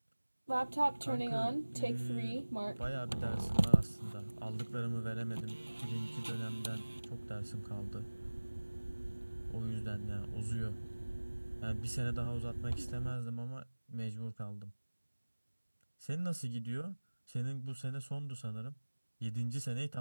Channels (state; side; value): inverted; both; correlation -1.00